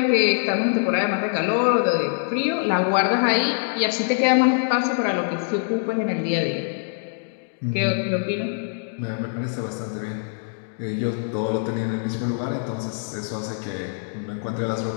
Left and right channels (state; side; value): silent; right; digital silence